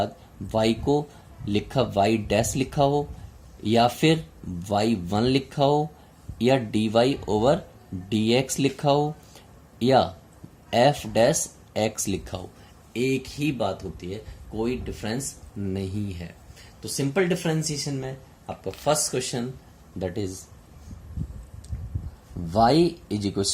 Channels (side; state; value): both; identical; correlation 1.00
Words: y को लिखा y डैश लिखा हो या फिर y1 लिखा हो या dy ओवर dx लिखा हो या f डैश x लिखा हो, एक ही बात होती है, कोई डिफरेंस नहीं है। तो सिंपल डिफरेंशिएशन में आपका first question that is y is equal